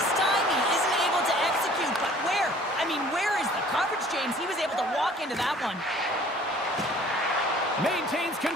time, he isn't able to execute. But where? I mean, where is the coverage, James? He was able to walk into that one. Maintains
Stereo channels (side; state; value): both; normal; correlation 0.52